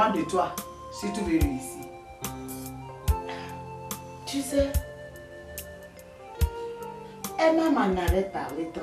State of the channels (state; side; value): identical; both; correlation 1.00